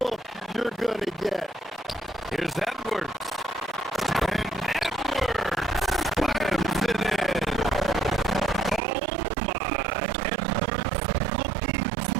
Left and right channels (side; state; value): left; drops out; at 8.8 s